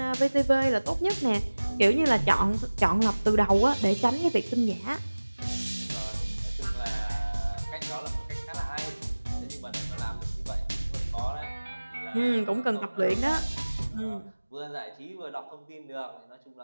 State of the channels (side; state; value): both; inverted; correlation -1.00